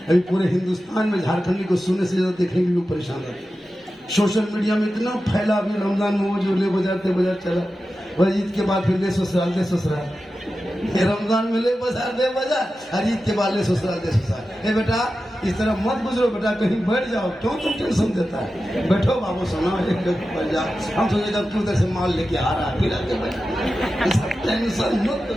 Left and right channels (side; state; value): both; normal; correlation 0.93